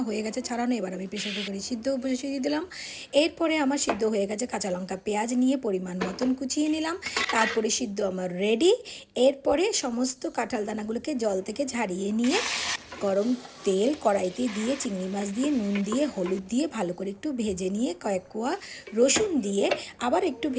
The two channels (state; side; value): identical; both; correlation 1.00